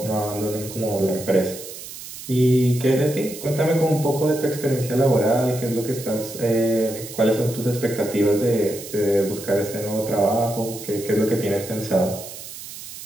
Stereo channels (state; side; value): noise; right; hiss, 12 dB below the sound